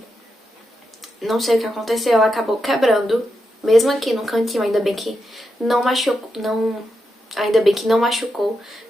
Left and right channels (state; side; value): normal; both; correlation 0.86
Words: não sei o que aconteceu, ela acabou quebrando, mesmo aqui no cantinho, ainda bem que não machucou,